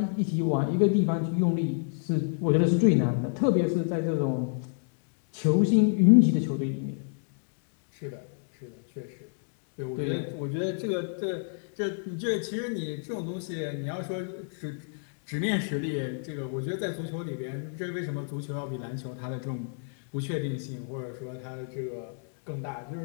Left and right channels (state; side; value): silent; right; digital silence